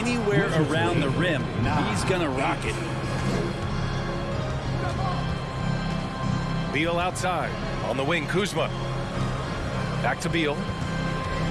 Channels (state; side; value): identical; both; correlation 1.00